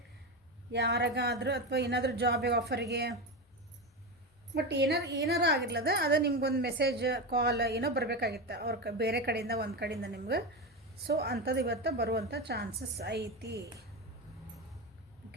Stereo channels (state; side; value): normal; both; correlation 0.17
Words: ಯಾರಿಗಾದ್ರೂ ಅಥವಾ ಏನಾದರೂ ಜಾಬ್ ಆಫರಿಗೆ, ಬಟ್ ಏನಾರು ಆಗಿರ್ಲದ ಅದು ನಿಮ್ಗೊಂದು ಮೆಸೇಜ್ ಕಾಲ್ ಏನೋ ಬರಬೇಕಾಗಿತ್ತು ಅವ್ರ ಬೇರೆ ಕಡೆಯಿಂದ, ಒಂದು ಕಡೆಯಿಂದ ನಿಮ್ಗೆ. ಸೊ ಅಂಥದ್ದು ಇವತ್ತು ಬರುವಂಥ ಚಾನ್ಸಸ್ ಐತಿ.